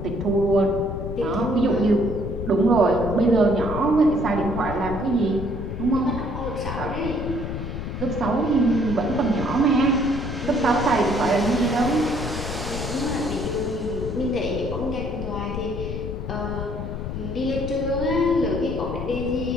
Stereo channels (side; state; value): left; noise; rumble, 5 dB below the sound